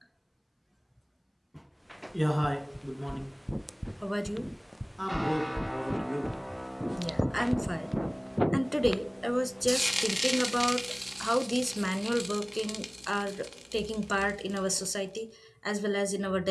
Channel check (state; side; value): identical; both; correlation 1.00